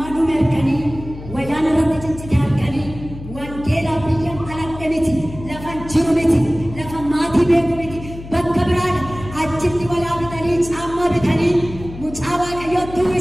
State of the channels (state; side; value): noise; left; hum, 13 dB below the sound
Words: dhume arganii wayyaan irratti ciccite arganii wangeelaa biyya aladhe miti lafan jiru miti lafa maatii beeku miti bakka biraadha achitti walaa bitanii caammaa bitanii mucaa Waaqayyootti